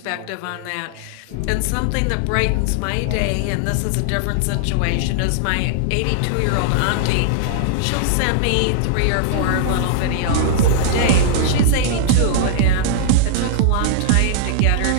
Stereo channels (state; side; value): different; both; correlation -0.01